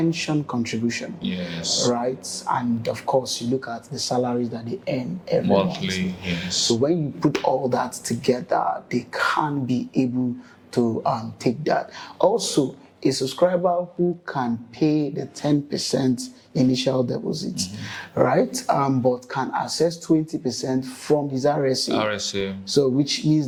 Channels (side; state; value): both; identical; correlation 1.00